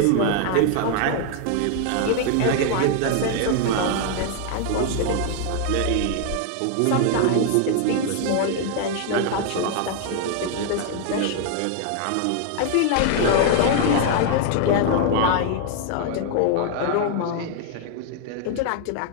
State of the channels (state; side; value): different; both; correlation 0.00